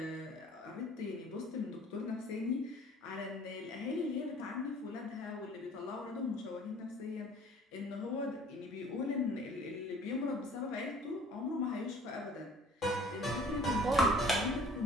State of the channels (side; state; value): both; normal; correlation 0.52